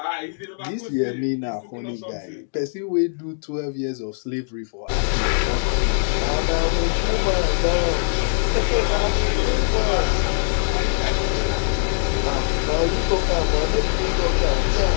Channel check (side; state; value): right; silent; digital silence